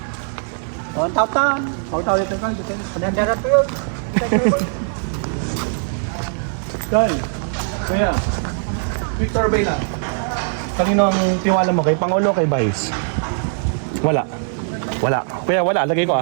Oh, tawtan. Taw dito ka. Kanandara to yun. Dahil, kaya, quick survey lang. Kanino ang tiwala mo? Kay Pangulo o kay Vice? Wala. Kaya wala, lagay ko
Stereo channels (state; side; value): silent; left; digital silence